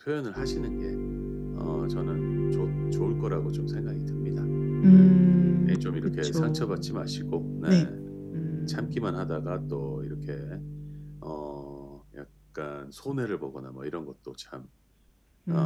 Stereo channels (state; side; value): identical; both; correlation 1.00